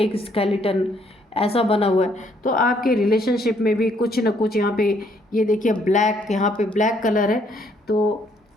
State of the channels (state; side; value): normal; both; correlation 0.68